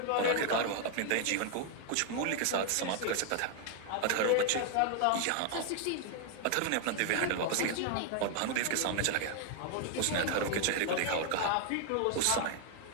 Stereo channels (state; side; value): different; both; correlation 0.00